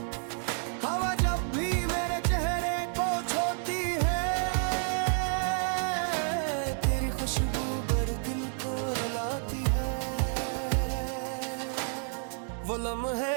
हवा जब भी मेरे चेहरे को छूती है, तेरी खुशबू भर दिल को रुलाती है, वो लम्हे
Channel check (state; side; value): silent; left; 58 dB below the other